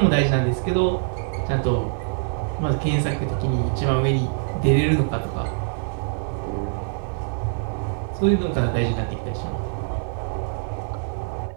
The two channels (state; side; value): silent; left; 61 dB below the other